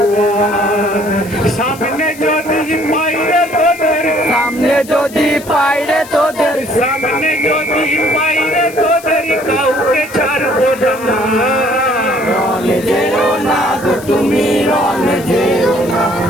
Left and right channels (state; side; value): noise; left; hiss, 18 dB below the sound